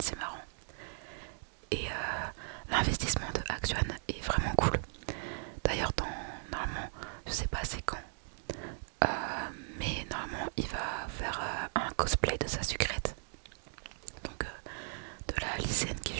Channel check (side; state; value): left; silent; digital silence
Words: marrant. Et l'investissement de Actuan est vraiment cool. D'ailleurs normalement, je sais pas c'est quand, mais normalement il va faire un cosplay de sa sucrète. Donc de la lycéenne qui